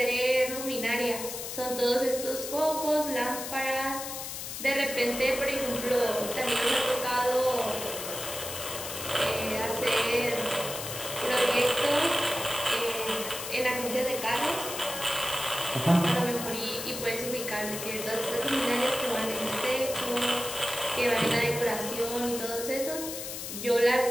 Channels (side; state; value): left; noise; hiss, 7 dB below the sound